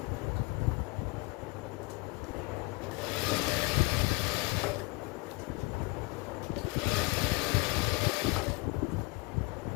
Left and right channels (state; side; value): quieter; right; 25.9 dB